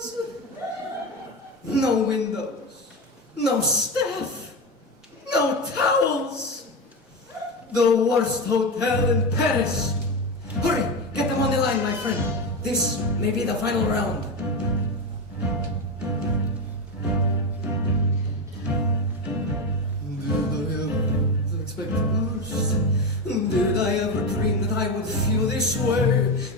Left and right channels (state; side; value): normal; both; correlation 0.16